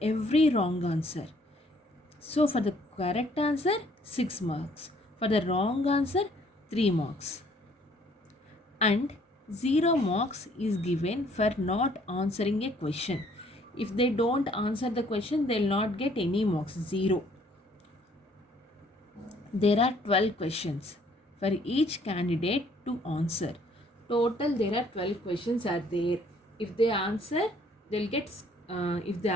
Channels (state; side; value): normal; both; correlation 0.62